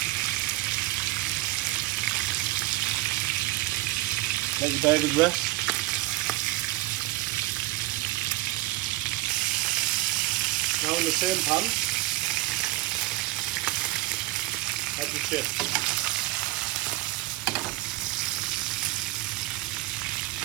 Let the burgers rest. Now in the same pan, add the chips.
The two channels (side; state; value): left; quieter; 18.7 dB